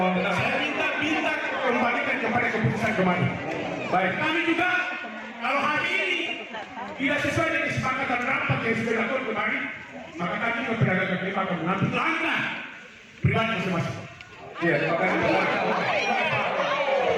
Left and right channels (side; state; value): both; identical; correlation 1.00